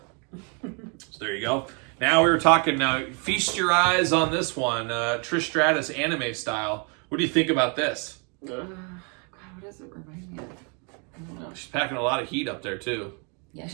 So there you go. Now we were talking, feast your eyes on this one. Trish Stratus anime style. What do you think about this? God, what does it remind me of? I don't know. She's packing a lot of heat up there, too. Yeah,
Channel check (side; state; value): left; quieter; 35.9 dB